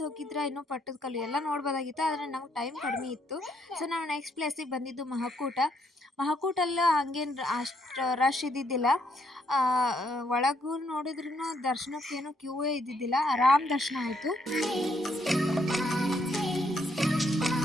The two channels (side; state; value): both; normal; correlation 0.73